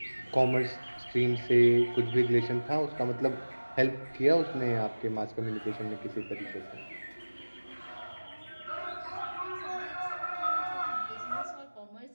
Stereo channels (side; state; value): both; inverted; correlation -1.00